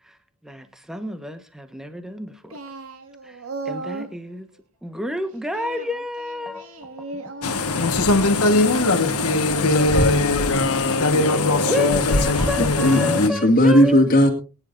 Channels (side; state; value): both; normal; correlation 0.31